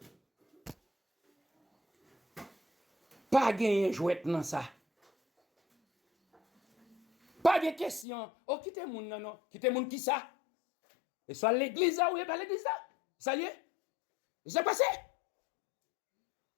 pas gagner jouet dans ça. Pas de question. Oh, quittez moun non. Quittez moun qui ça? Et soit l'église ou pas l'église là? Ça y est? C'est passé.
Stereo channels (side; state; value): right; drops out; at 8.1 s